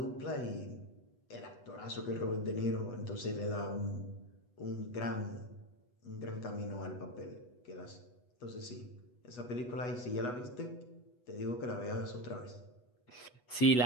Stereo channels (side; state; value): right; late; 8.2 ms